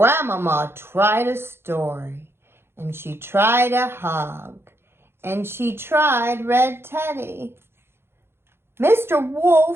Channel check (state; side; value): late; left; 0.11 ms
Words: tried a story, and she tried a hug, and she tried Red Teddy. Mr.